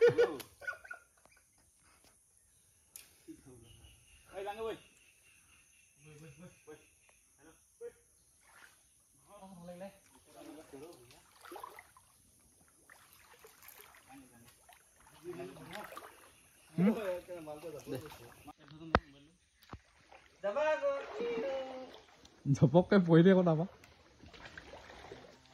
ঝপককে পৰি দিয়ে আকৌ তাৰপৰা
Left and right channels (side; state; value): both; identical; correlation 1.00